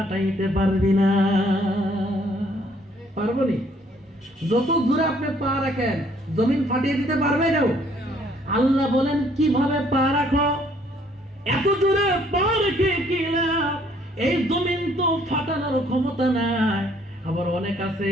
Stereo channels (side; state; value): both; normal; correlation 0.63